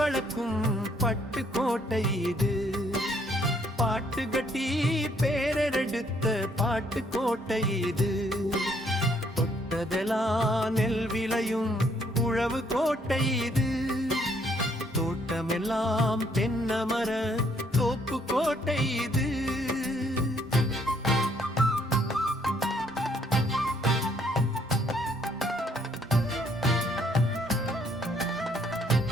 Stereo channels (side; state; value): both; normal; correlation 0.67